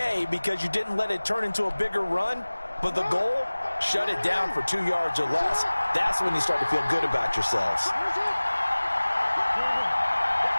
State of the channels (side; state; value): both; inverted; correlation -1.00